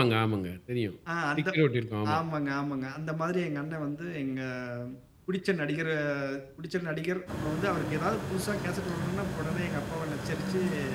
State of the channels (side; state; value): both; identical; correlation 1.00